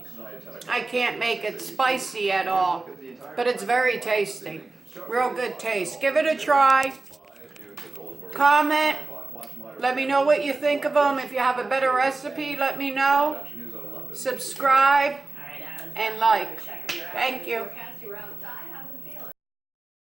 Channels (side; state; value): left; quieter; 3.3 dB